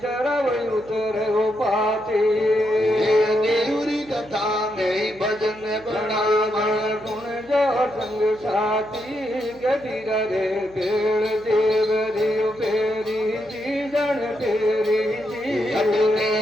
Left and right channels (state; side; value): noise; right; hum, 24 dB below the sound